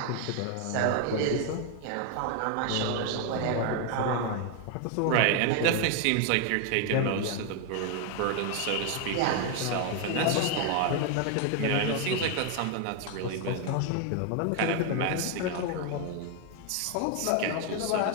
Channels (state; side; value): different; both; correlation 0.01